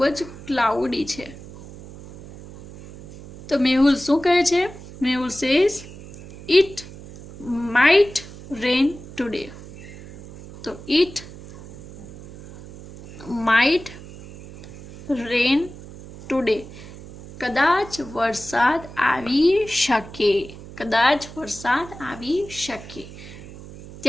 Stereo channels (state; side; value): noise; right; hum, 16 dB below the sound